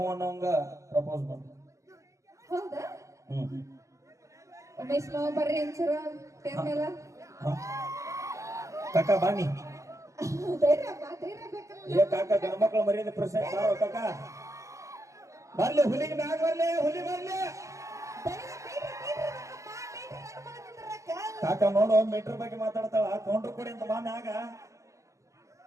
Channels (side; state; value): left; late; 0.15 ms